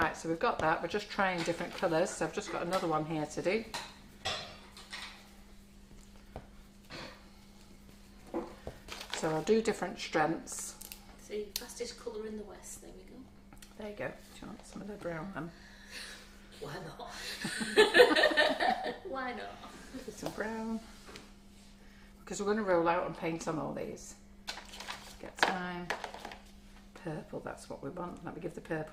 So we've got that. We're just trying different colours. So I've just got another one here to do. So I'll do different strengths. See, fastest colour in the West. There we go. There you go. Do you want some of the brown then? Why not? Why not? Do some brown. Because we're going to roll out and paint on all these. Get time. Purple, that's what we want. Let me give the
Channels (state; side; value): identical; both; correlation 1.00